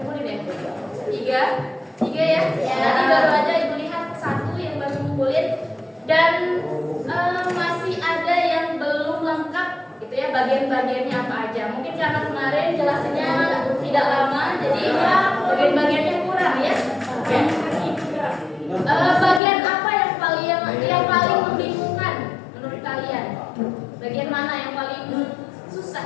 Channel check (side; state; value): right; drops out; at 19.4 s